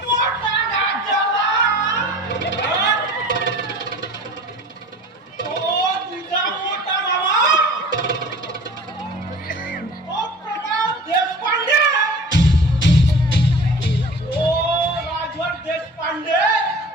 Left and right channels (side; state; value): both; normal; correlation 0.42